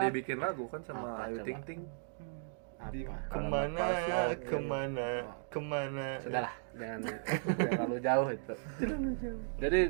dibikin lagu kan sama Apa Ayu coba? Ting Ting. Apa Kemana. sudahlah, jangan terlalu jauh itu. Jadi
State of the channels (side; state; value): left; silent; digital silence